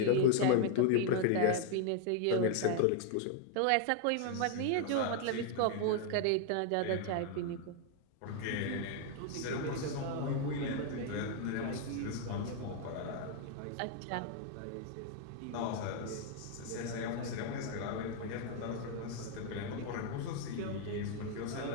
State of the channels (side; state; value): both; different; correlation 0.00